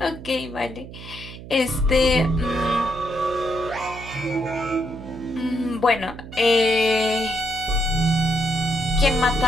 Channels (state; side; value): noise; right; hum, 14 dB below the sound